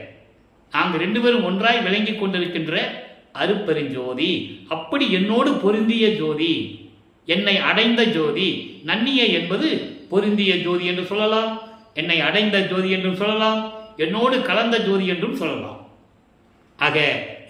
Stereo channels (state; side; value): identical; both; correlation 1.00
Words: நாங்கள் 2 பேரும் ஒன்றாய் விளங்கி கொண்டிருக்கின்ற அருப்பெருஞ்சோதி. அப்படி என்னோடு பொருந்திய ஜோதி, என்னை அடைந்த ஜோதி. நன்னிய என்பது பொருந்திய ஜோதி என்று சொல்லலாம், என்னை அடைந்த ஜோதி என்றும் சொல்லலாம், என்னோடு கலந்த ஜோதி என்றும் சொல்லலாம். ஆக